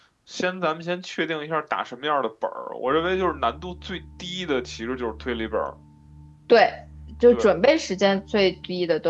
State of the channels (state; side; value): identical; both; correlation 1.00